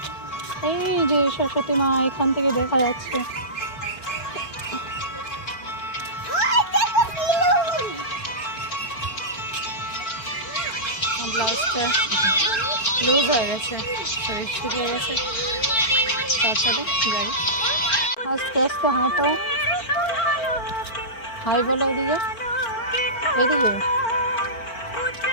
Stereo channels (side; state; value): right; late; 4.4 ms